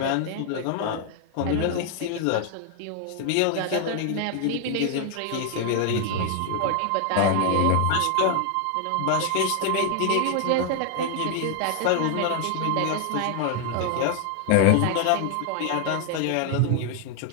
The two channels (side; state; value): both; different; correlation 0.00